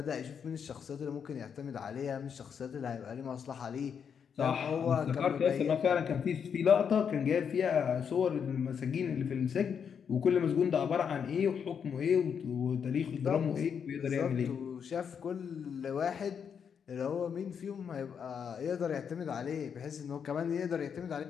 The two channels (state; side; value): quieter; right; 7.2 dB